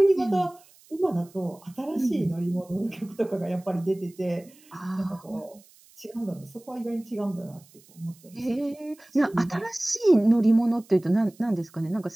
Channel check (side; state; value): right; noise; hiss, 27 dB below the sound